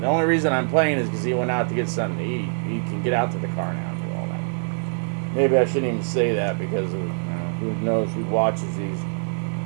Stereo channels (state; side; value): silent; left; digital silence